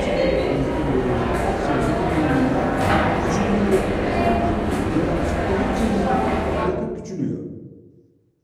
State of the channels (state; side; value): identical; both; correlation 1.00